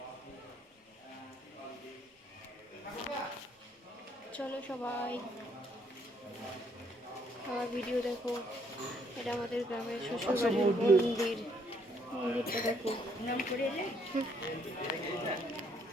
চলো সবাই আমার ভিডিও দেখো। এটা আমাদের গ্রামের শ্বশুরবাড়ির মন্দির। মন্দিরটা দেখো।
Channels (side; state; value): both; normal; correlation 0.68